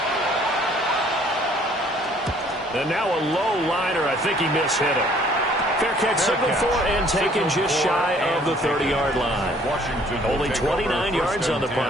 And now a low liner. I think he mishit it. Fair catch signal for and taken just shy of the 30-yard line. Only 29 yards on the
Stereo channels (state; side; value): normal; both; correlation 0.59